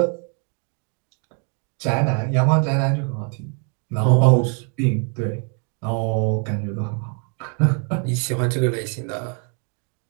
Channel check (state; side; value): quieter; left; 39.9 dB